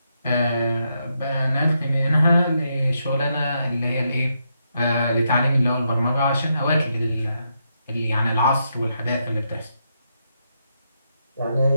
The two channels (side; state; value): both; inverted; correlation -0.81